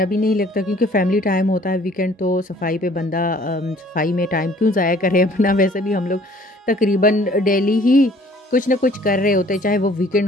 भी नहीं लगता, क्योंकि फैमिली टाइम होता है वीकेंड, तो सफाई पे बंदा सफाई में टाइम क्यों ज़ाया करे अपना। वैसे भी हम लोग तकरीबन डेली ही कुछ ना कुछ कर रहे होते हैं, चाहे वो वीकेंड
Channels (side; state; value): both; normal; correlation 0.56